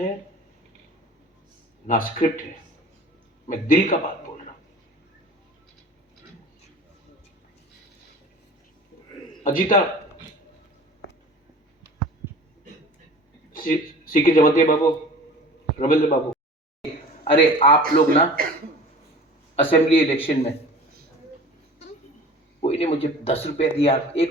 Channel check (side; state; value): both; normal; correlation 0.42